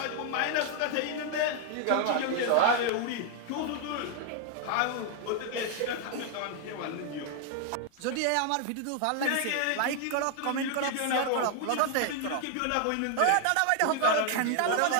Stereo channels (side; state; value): both; different; correlation 0.00